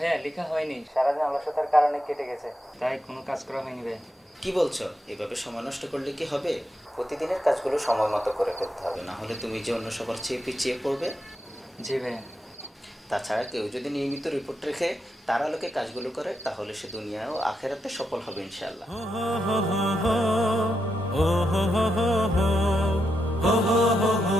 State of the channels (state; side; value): normal; both; correlation 0.84